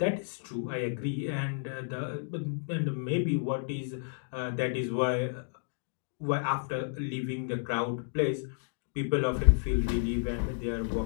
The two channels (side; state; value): right; silent; digital silence